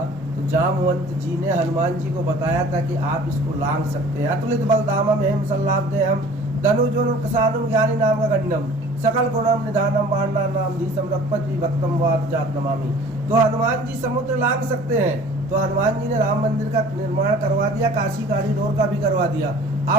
तो जामवंत जी ने हनुमान जी को बताया था कि आप इसको लांघ सकते हैं। अतुलित बलधामम हेम सल्लाभदेहम धनुजोन किसानुम ज्ञानी नाम का गण्डम सकल गुणम निधानम बाणा नाम धीसम रघुपति विभक्तम वाद जात नमामि। तो हनुमान जी समुद्र लांघ सकते हैं, तो हनुमान जी ने राम मंदिर का निर्माण करवा दिया, काशी कॉरिडोर का भी करवा दिया।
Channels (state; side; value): normal; both; correlation 0.47